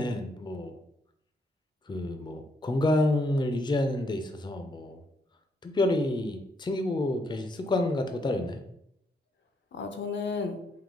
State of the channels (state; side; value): normal; both; correlation 0.75